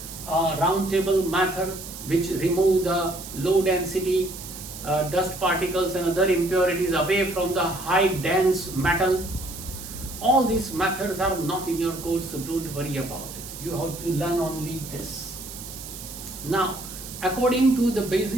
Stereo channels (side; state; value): right; noise; hiss, 12 dB below the sound